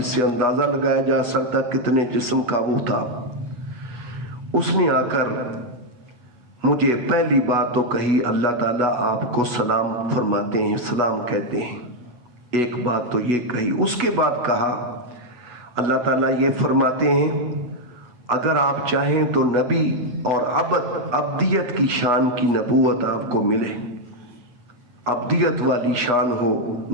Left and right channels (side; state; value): left; late; 8.2 ms